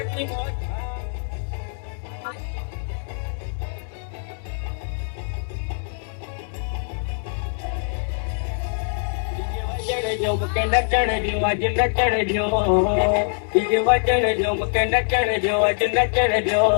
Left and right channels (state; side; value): silent; right; digital silence